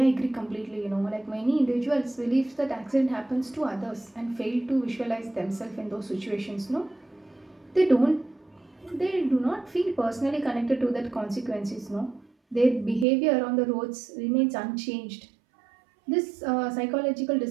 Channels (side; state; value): left; drops out; at 13.1 s